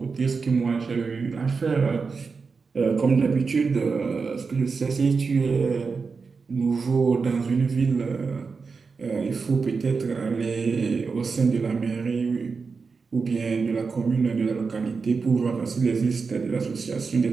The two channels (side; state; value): left; quieter; 4.9 dB